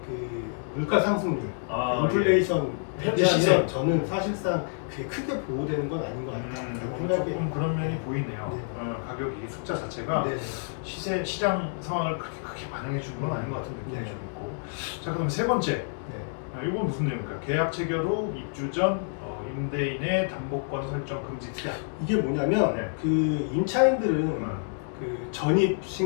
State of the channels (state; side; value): silent; right; digital silence